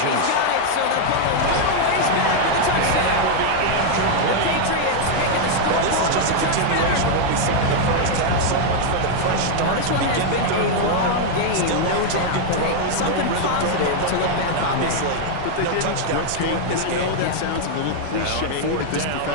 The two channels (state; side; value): different; both; correlation 0.00